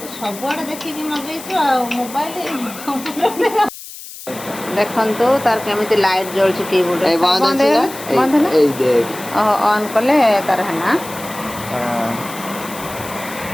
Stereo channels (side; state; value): left; noise; hiss, 14 dB below the sound